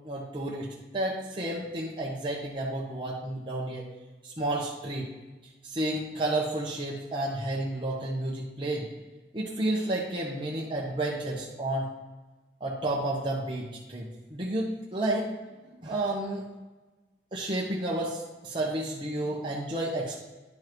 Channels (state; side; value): normal; both; correlation 0.44